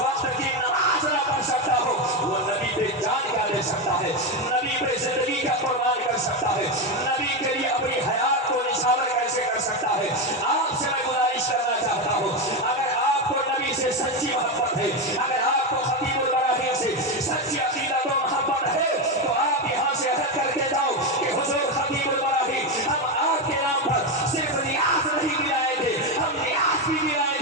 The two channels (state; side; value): normal; both; correlation 0.12